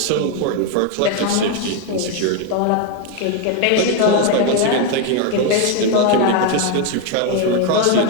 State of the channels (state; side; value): different; both; correlation 0.02